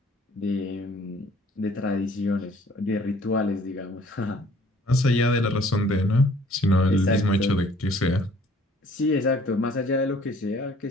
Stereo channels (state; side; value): normal; both; correlation 0.56